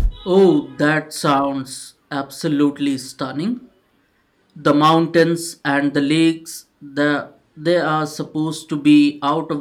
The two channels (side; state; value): both; identical; correlation 1.00